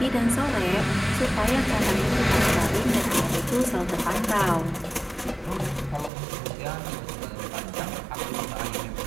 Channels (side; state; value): left; drops out; at 6.1 s